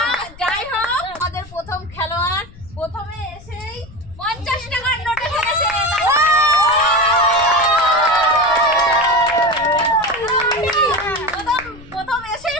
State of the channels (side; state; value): left; noise; rumble, 20 dB below the sound